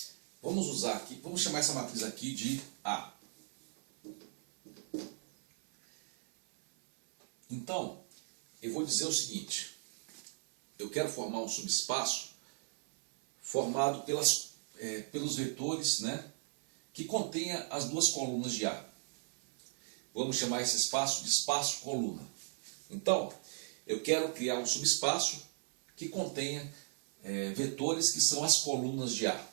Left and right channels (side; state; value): left; silent; 54 dB below the other